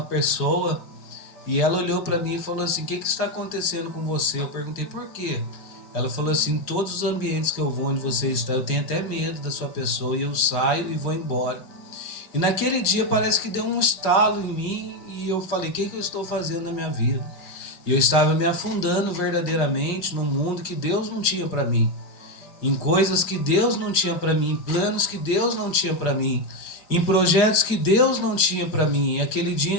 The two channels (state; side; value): late; right; 5.1 ms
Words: pessoa, e ela olhou para mim e falou assim: O que está acontecendo com você? Eu perguntei: Por quê? Ela falou assim: Em todos os ambientes que eu vou, onde você está, eu tenho até medo da sua pessoa, e eu saio e vou embora. E naquele dia parece que deu um estalo em mim, e eu falei: O que eu estou fazendo na minha vida? E eu estava me afundando verdadeiramente num mundo que Deus não tinha para mim, em coisas que Deus não tinha para mim, em planos que Deus não tinha para mim, em projetos que Deus não tinha para mim. E aquele